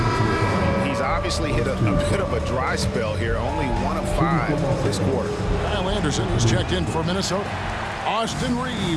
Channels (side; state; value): both; identical; correlation 1.00